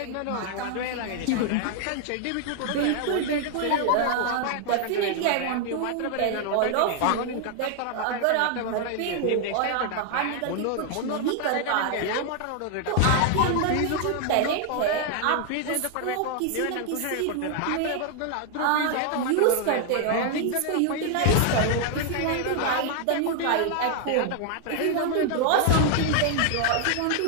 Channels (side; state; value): both; different; correlation 0.00